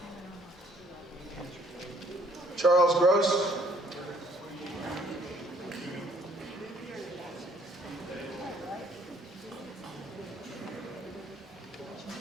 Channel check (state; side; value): normal; both; correlation 0.62